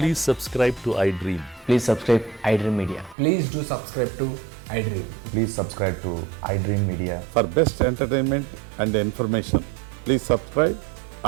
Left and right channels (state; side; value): drops out; left; at 3.2 s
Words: subscribe to iDream. Please subscribe iDream Media. Please do subscribe to iDream. Please subscribe to iDream Media. For best entertainment and information, please subscribe